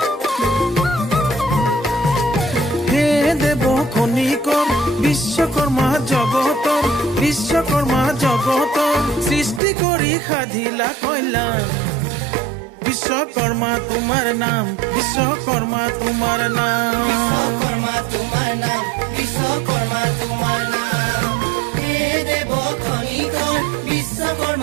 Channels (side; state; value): left; drops out; at 9.6 s